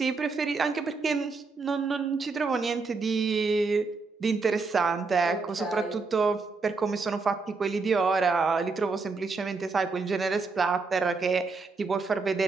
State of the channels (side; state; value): left; quieter; 4.2 dB